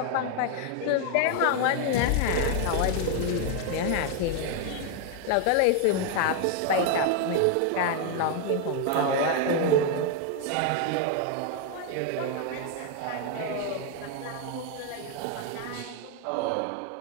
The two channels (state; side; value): different; both; correlation 0.01